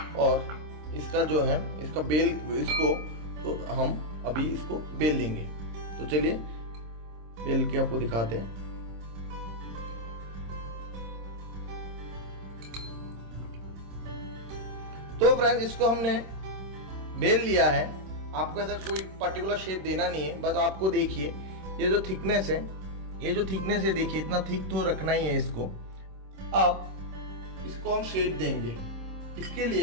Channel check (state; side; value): late; left; 26 ms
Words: और इसका जो है इसका बेल इसको तो हम अभी इसको बेल लेंगे। तो चलिए बेल के आपको दिखाते हैं। तो फ्रेंड्स इसको हमने बेल लिया है। आपको ऐसा कोई पर्टिकुलर शेप देना नहीं है, बस आपको देखिए ये जो थिकनेस है देखिए इतना थिक तो रखना ही है इसको। अब इसको हम शेप देंगे। इसके